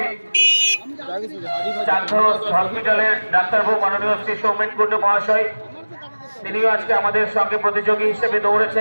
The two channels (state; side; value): inverted; both; correlation -1.00